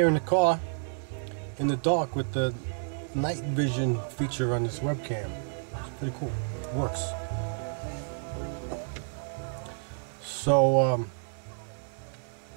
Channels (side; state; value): left; silent; digital silence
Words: in the car, in the dark with the night vision feature on this webcam. It's pretty cool, it works. So,